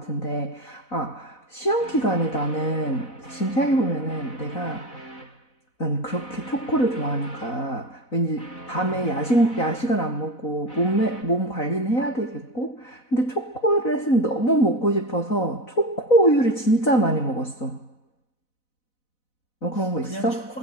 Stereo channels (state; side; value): late; right; 4.0 ms